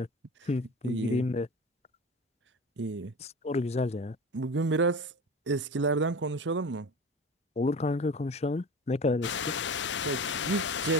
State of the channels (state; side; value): normal; both; correlation 0.33